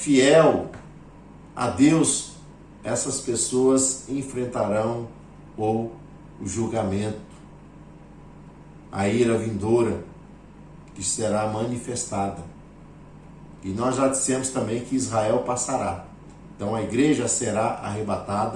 a Deus, essas pessoas enfrentarão o julgamento, a ira vindoura que será manifestada. E nós já dissemos também que Israel passará. Então a igreja será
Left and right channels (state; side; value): identical; both; correlation 1.00